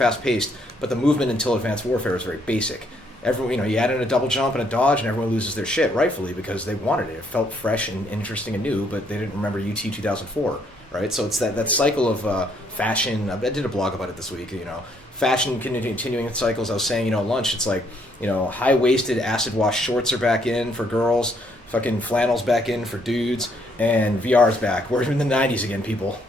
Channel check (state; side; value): normal; both; correlation 0.70